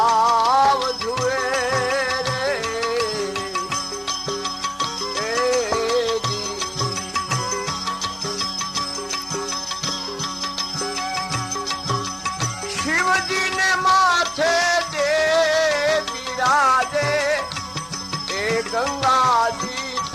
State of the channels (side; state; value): both; identical; correlation 1.00